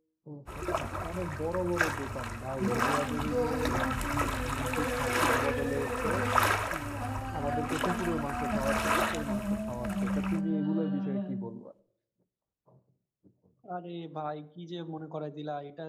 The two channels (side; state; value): both; identical; correlation 1.00